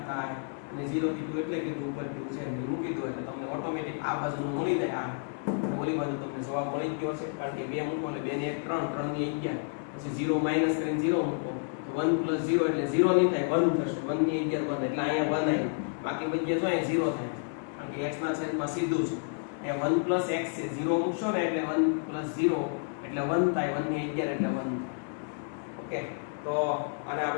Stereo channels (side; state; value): right; silent; 58 dB below the other